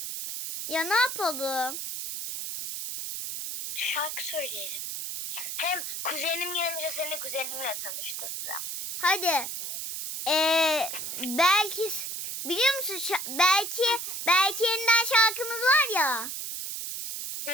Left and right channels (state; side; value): noise; right; hiss, 5 dB below the sound